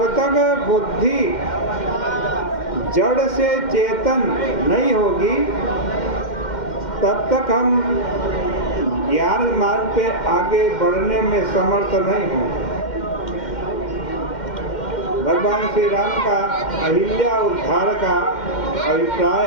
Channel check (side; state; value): right; late; 2.1 ms